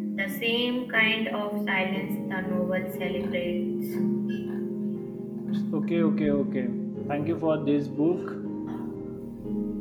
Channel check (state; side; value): identical; both; correlation 1.00